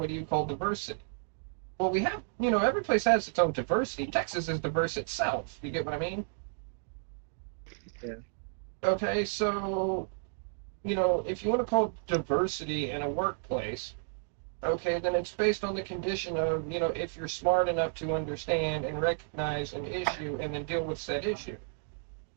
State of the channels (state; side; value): silent; left; digital silence